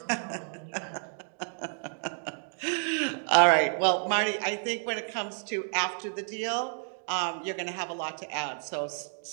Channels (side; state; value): left; silent; 58 dB below the other